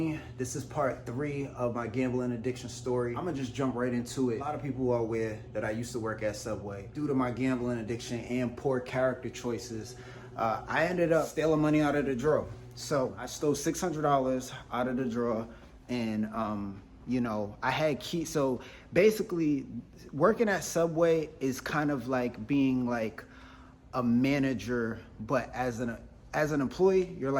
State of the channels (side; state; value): both; identical; correlation 1.00